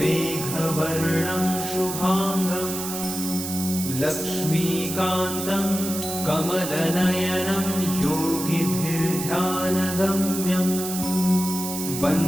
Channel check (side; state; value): right; noise; hiss, 6 dB below the sound